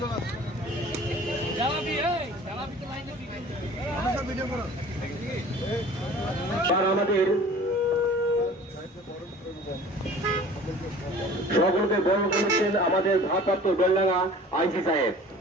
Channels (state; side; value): normal; both; correlation 0.45